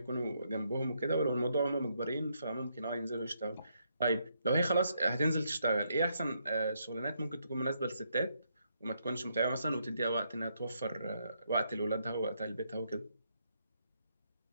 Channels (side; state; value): both; inverted; correlation -0.76